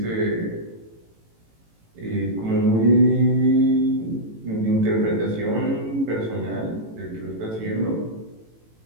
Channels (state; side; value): late; left; 18 ms